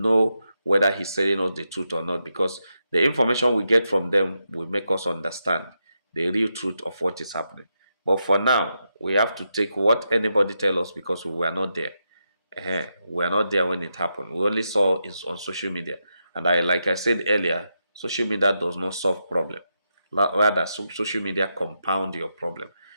know whether he's telling us the truth or not, because the information we get from them will make us understand the real truth of what is happening. But for now, we have to take what anybody tell us because we were not there. We are not there when it happened. We only saw it on social media. And like I said earlier, social media does not solve problem. Rather, social media compound your problem.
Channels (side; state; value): both; inverted; correlation -0.85